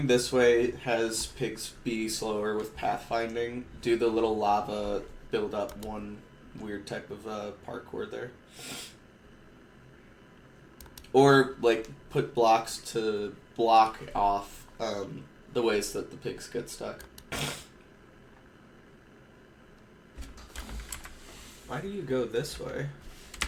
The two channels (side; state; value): both; identical; correlation 1.00